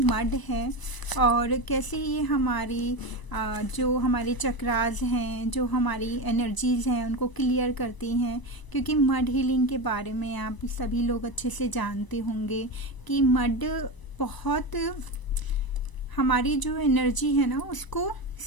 है और कैसे ये हमारी जो हमारे चक्रास हैं, जो हमारी एनर्जीज़ हैं उनको क्लियर करती हैं। क्योंकि मड हीलिंग के बारे में आप सभी लोग अच्छे से जानते होंगे कि मड बहुत हमारी जो एनर्जी है ना उसको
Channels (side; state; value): right; late; 1.0 ms